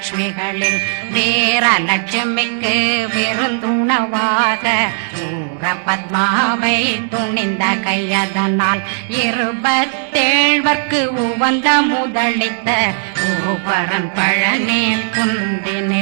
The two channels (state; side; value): silent; left; 69 dB below the other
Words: தேரலட்சுமிக்கு விருந்துணவாத பத்மாவை துணிந்த கையதனால் 27 உவந்த முதலித்த உருபரன் பழனி